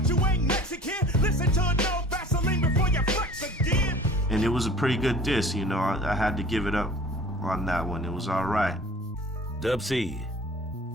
you ain't Mexican. Listen to a No Vaseline before you flex again. And it was a pretty good diss, you know. I had to give it up on that one. It was all right. Dub C,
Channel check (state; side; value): normal; both; correlation 0.45